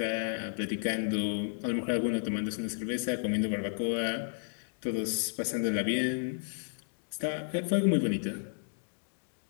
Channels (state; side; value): silent; right; digital silence